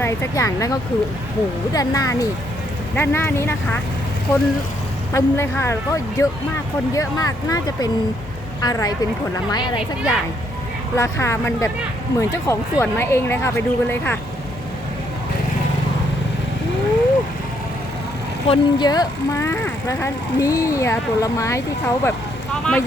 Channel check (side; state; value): both; normal; correlation 0.72